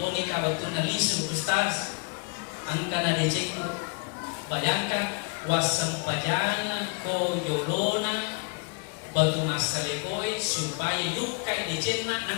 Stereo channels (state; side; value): quieter; right; 33.8 dB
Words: kabatun nalisum Ustaz angka na di Cina. Bayangkan wasam pajana ko yolona batu masalegoy supaya lukai di jenna